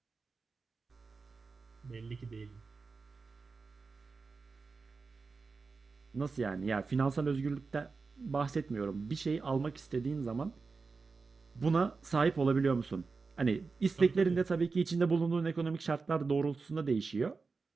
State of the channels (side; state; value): left; quieter; 4.4 dB